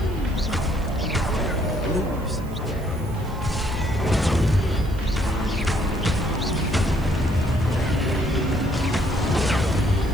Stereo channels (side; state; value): right; noise; hiss, 24 dB below the sound